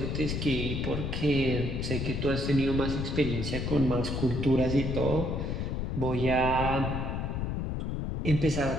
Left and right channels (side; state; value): left; noise; rumble, 2 dB below the sound